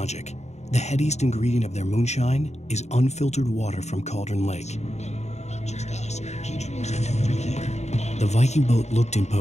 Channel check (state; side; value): late; right; 0.32 ms